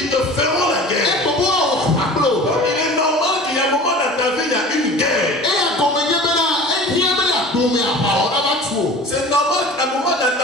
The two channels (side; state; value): both; normal; correlation 0.40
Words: te feront la guerre. Il est normal qu'il y a un moment dans ta vie, il y a une guerre. C'est normal qu'à un moment dans